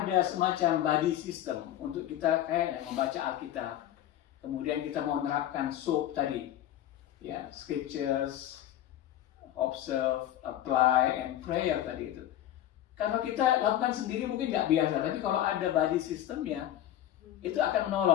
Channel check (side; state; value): right; quieter; 12.2 dB